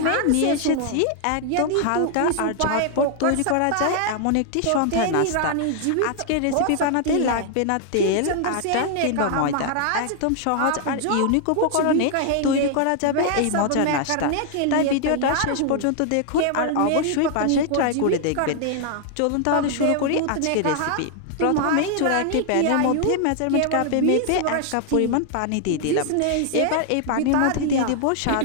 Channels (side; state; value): both; different; correlation 0.00